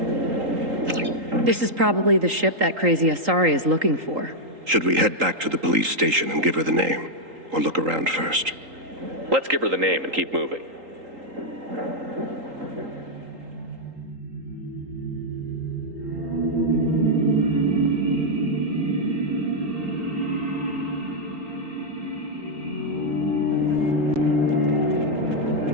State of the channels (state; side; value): late; left; 3.8 ms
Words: This is probably the ship that crazy Asari is looking for. Should we head back to the police station and give her the name? Or look around first? Let's give her the name and keep moving.